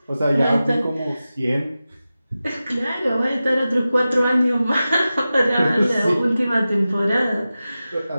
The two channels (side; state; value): both; inverted; correlation -0.94